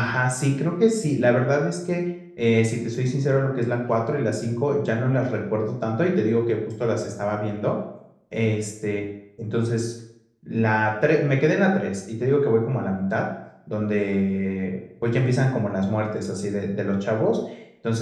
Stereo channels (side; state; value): both; identical; correlation 1.00